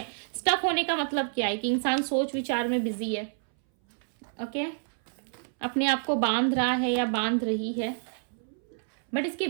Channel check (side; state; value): left; silent; 59 dB below the other